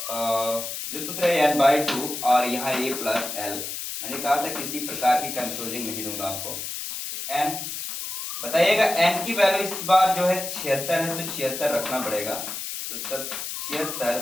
जो सूत्र है n/2 और यहाँ a प्लस l। मैंने कहा था किसी प्रकार की कंफ्यूजिंग नहीं दूंगा आपको। n बताइएगा, n की वैल्यू इस बार जो है 76 है तो 76 रखना पड़ेगा, तो 76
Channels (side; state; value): left; noise; hiss, 6 dB below the sound